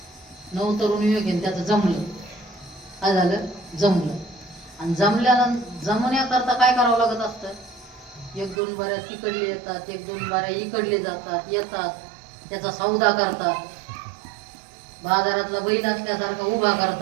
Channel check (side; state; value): left; drops out; at 8.6 s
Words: नवतरुण युवक आहे, त्याचं जमलं. काय झालं? जमलं. आणि जमण्याकरता काय करावं लागत असतं? 1-2 बाऱ्या तिकडले येतात, 1-2 बाऱ्या इकडले जातात, येतात, त्याचा सौदा करतात. बाजारातला बैल असल्यासारखा उभा